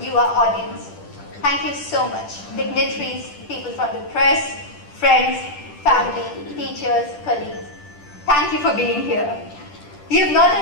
you, our audience. Thank you so much. Dignitaries, people from the press, friends, family, teachers, colleagues. Thank you for being here. You've not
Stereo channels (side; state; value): right; late; 10 ms